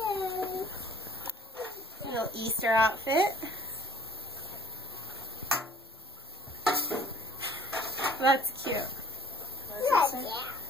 Little Easter outfit. That's cute.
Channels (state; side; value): normal; both; correlation 0.55